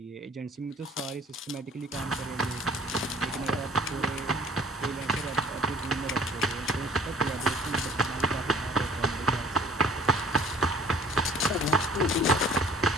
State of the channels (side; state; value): both; normal; correlation 0.50